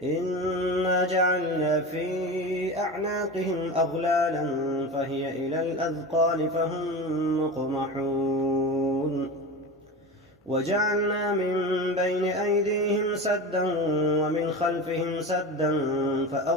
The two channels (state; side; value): normal; both; correlation 0.27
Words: إنا جعلنا في أعناقهم أغلالا فهي إلى الأذقان فهم مقمحون وجعلنا من بين أيديهم سدا ومن خلفهم سدا